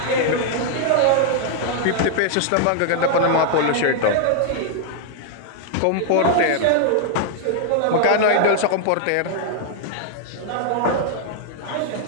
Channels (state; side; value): different; both; correlation 0.00